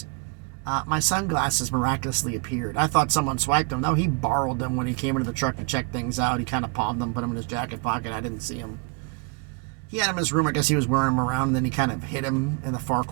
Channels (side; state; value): left; quieter; 31.4 dB